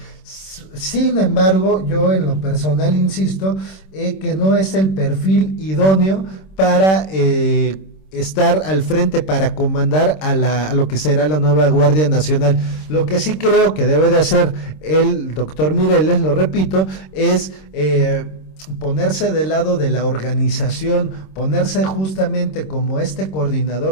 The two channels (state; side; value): late; right; 26 ms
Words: Sin embargo, yo en lo personal insisto que no es el perfil idóneo para estar al frente, para comandar a lo que será la nueva Guardia Nacional. Lo que sí creo que debe de hacer el doctor Mireles, lo repito, es ponerse del lado de la organización, ponerse justamente como este